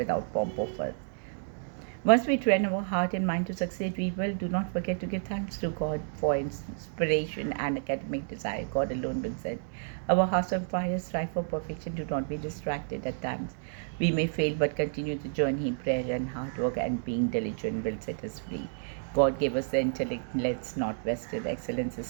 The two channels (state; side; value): silent; left; digital silence